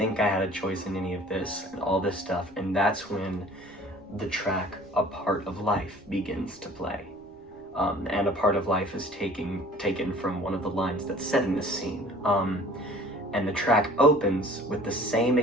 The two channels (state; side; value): noise; right; rumble, 28 dB below the sound